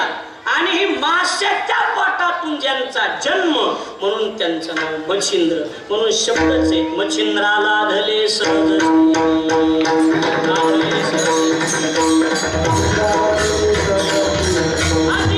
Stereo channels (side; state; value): both; identical; correlation 1.00